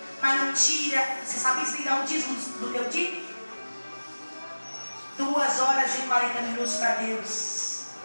mas não tira. Você sabe que você tem que dar um dízimo do teu dia? 2 horas e 40 minutos para Deus.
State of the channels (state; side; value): inverted; both; correlation -1.00